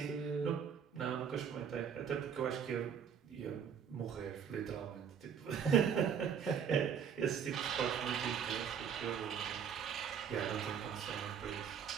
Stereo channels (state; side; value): quieter; left; 7.5 dB